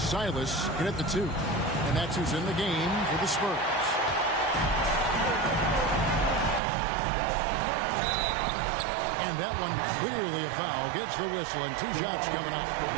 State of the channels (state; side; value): drops out; left; at 6.6 s